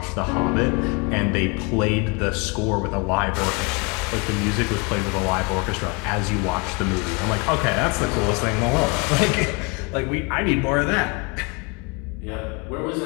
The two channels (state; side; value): quieter; right; 30.1 dB